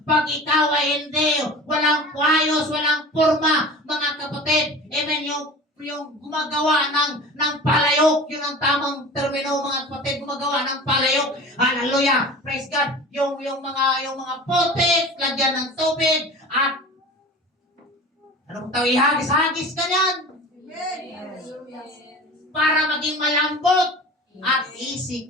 Pag ikaw ay hindi, walang kwayos, walang purma, mga kapatid, amen, yung gumagawa ng palayok, yun ang tamang termino, mga kapatid, gumagawa ng palayok. Hallelujah! Praise God! Yung mga putik, lagyan ng tubig, at anong tawag, ihagis-hagis ka yan para maging malambot at easy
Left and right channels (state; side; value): normal; both; correlation 0.37